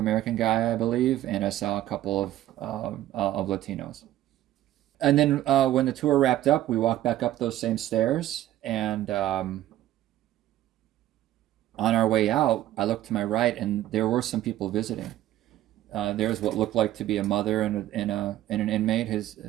guy, I believe, and I saw a couple of Latinos. And then when the tour wrapped up, we walked back up those same stairs, and on our way out, I looked to my right, and there were some people visiting. There's what looked like to be a mother and an inmate,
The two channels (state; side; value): quieter; left; 13.7 dB